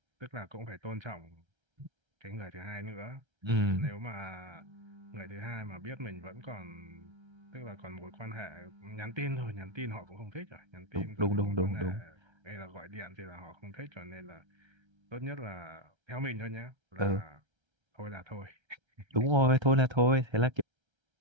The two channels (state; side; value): late; left; 1.3 ms